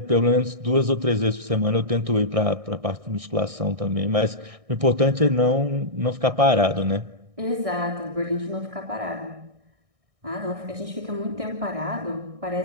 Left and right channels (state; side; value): late; left; 1.6 ms